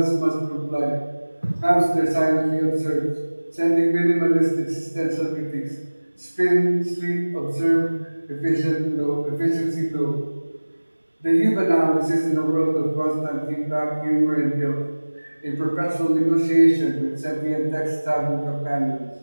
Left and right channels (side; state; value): both; inverted; correlation -1.00